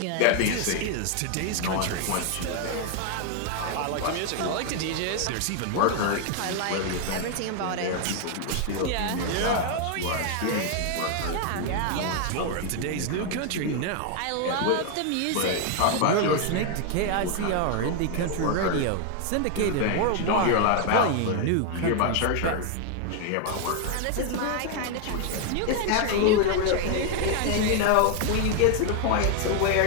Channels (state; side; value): different; both; correlation 0.00